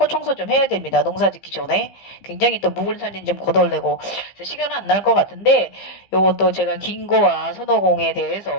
청소 좀 해야 됩니다. 농사 짓기 전에 굉장히 또 묵은 살림 좀 거덜내고 시간은 안 날 것 같은데 요것도 제가 긴고와 손오공에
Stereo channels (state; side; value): late; right; 15 ms